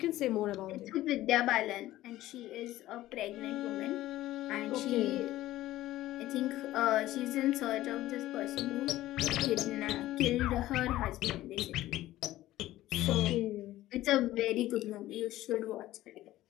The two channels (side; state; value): right; quieter; 15.4 dB